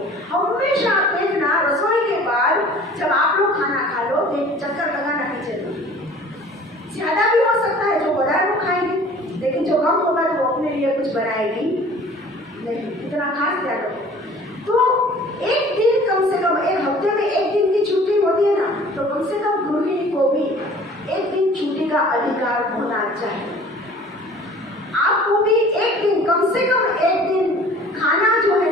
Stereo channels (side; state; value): both; normal; correlation 0.48